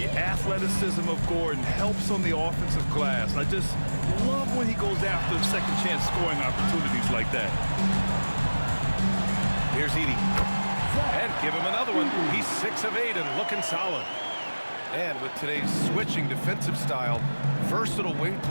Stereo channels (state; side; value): inverted; both; correlation -1.00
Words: athleticism of Gordon helps on the offensive glass. I just love when he goes after second chance scoring opportunities like that. Here's Edey. And give him another one. He's 6 of 8 and looking solid. And with today's switching defensive style, versatile wing